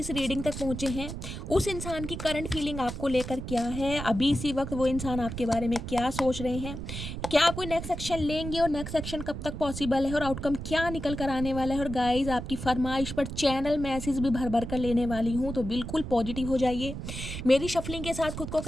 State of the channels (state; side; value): noise; right; rumble, 7 dB below the sound